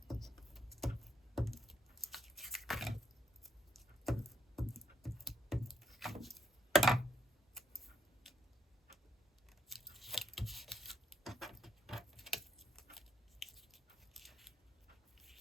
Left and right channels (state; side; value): normal; both; correlation 0.74